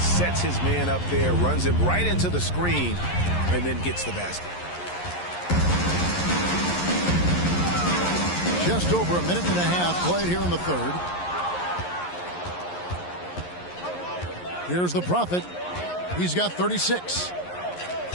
his man up there, runs him right into the screen, and then gets the basket. Just over a minute and a half played here in the third. Here's the Prophet. He's got 36.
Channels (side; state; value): right; late; 11 ms